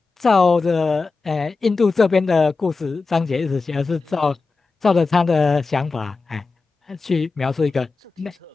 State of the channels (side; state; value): right; quieter; 4.1 dB